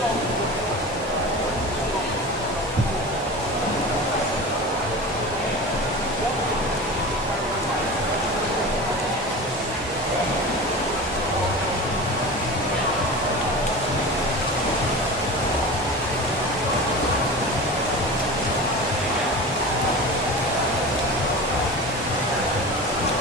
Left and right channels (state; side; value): normal; both; correlation 0.31